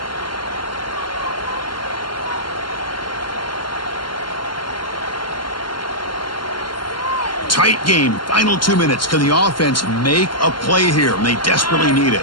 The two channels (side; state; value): right; late; 0.72 ms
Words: Tight game. Final 2 minutes. Can the offense make a play here? And they desperately need